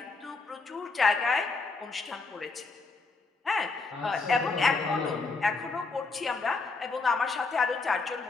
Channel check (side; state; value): right; quieter; 4.0 dB